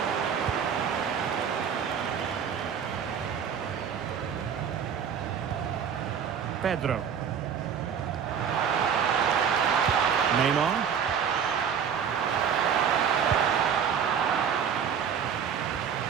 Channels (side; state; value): left; quieter; 7.6 dB